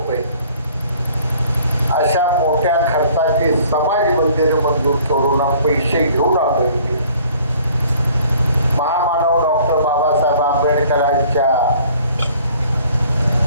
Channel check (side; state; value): both; inverted; correlation -0.55